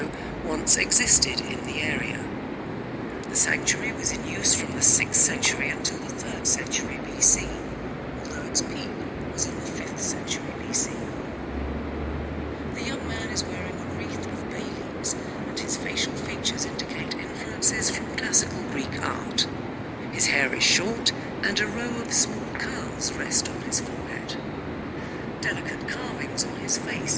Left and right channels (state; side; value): identical; both; correlation 1.00